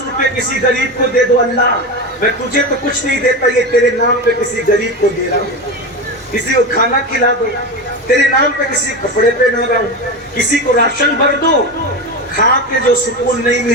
کسی غریب کو دے دو، اللہ میں تجھے تو کچھ نہیں دیتا، یہ تیرے نام پہ کسی غریب کو دے رہا ہوں. کسی کو کھانا کھلا دو، تیرے نام پہ کسی کپڑے پہ نہ رہا ہوں. کسی کو راشن بھر دو، کھا کے جو سکون نہیں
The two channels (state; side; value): normal; both; correlation 0.21